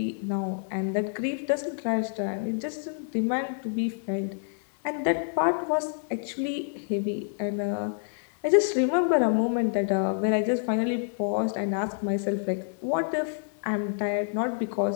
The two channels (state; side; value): silent; right; digital silence